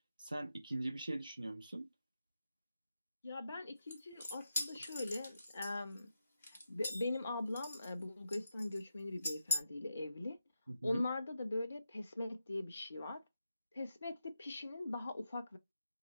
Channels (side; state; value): both; inverted; correlation -0.86